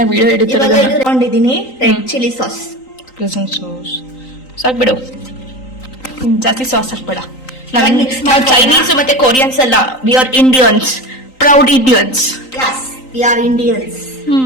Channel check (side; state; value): right; late; 3.9 ms